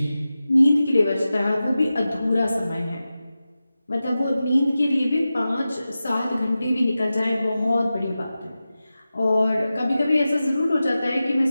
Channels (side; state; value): both; inverted; correlation -0.94